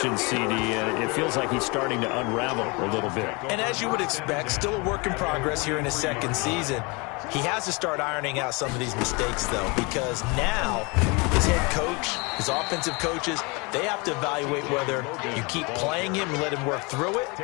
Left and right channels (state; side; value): quieter; right; 28.5 dB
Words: CD. It feels like he's starting to unravel a little bit. And as you would expect, still a work in progress here in his second season. He has to start ironing out some of these mistakes, though, because now his head coach, his offensive coaches, they have to evaluate whether you keep playing him and let him work through it,